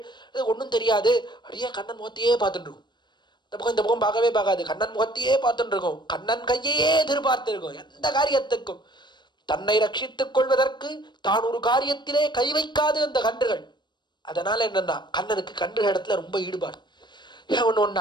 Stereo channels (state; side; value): late; right; 0.22 ms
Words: இது ஒன்றும் தெரியாது, அப்படியே கண்ணன் முகத்தையே பார்த்துட்டு இருக்கும். இந்த பக்கம் பார்க்கவே பார்க்காது, கண்ணன் முகத்தையே பார்த்துட்டு இருக்கும், கண்ணன் கையே எதிர்பார்த்து இருக்கும். எந்த காரியத்துக்கும் தன்னை ரட்சித்துக் கொள்வதற்கு தான் ஒரு காரியத்திலே கை வைக்காது அந்த கன்றுகள். அதனால என்னன்னா கண்ணனுக்கு கன்றுகள் இடத்துல ரொம்ப ஈடுபாடு.